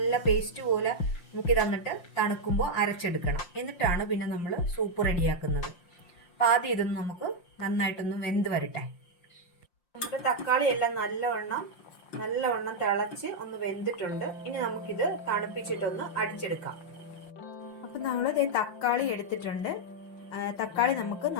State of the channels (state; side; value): late; right; 5.7 ms